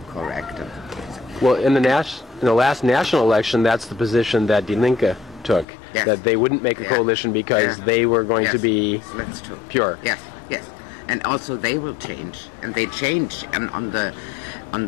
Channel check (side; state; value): right; drops out; at 5.7 s